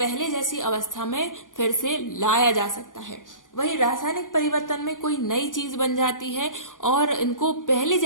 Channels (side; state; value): right; late; 0.88 ms